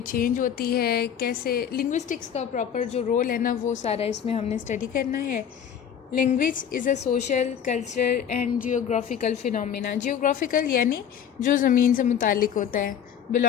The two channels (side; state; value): right; quieter; 8.6 dB